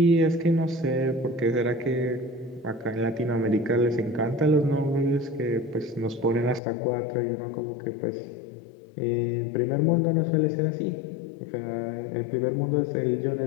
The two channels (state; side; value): drops out; right; at 6.6 s